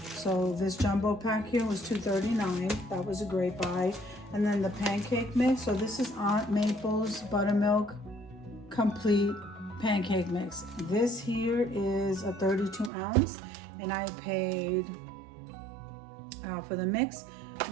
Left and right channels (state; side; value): drops out; left; at 12.9 s